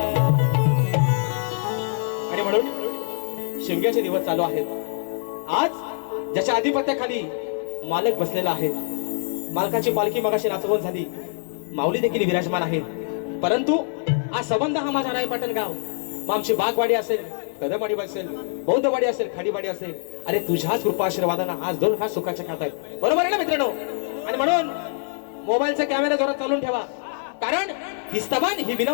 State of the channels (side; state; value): right; silent; digital silence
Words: शिमग्याचे दिवस चालू आहेत. आज ज्याच्या आधिपत्याखाली मालक बसलेला आहे मालकाची पालखी मगाशी नाचवून झाली माऊली देखील विराजमान आहे. परंतु आज संबंध हा माझा रायपाटण गाव मग आमची बागवाडी असेल कदमवाडी असेल बौद्धवाडी असेल खाडीवाडी असेल अरे तुझ्याच कृपा आशीर्वादानं आज 2 खास सुखाच्या खात आहेत बरोबर आहे ना मित्रांनो. आणि म्हणून मोबाईलचा कॅमेरा जोरात चालून ठेवा कारण हिस्तबान ही